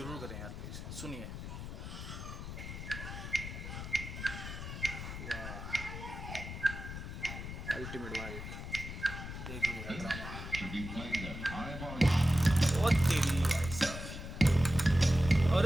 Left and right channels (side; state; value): left; noise; rumble, 8 dB below the sound